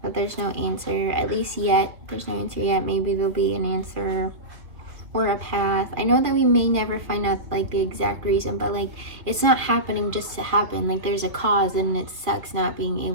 but there's no answer, at least yet. There's no answer yet. Maybe there'll be an answer or a path. I know that we may never find out like the exact reason, but like it's not happening just to happen. Like there's a cause, and it sucks not being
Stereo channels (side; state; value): left; late; 2.6 ms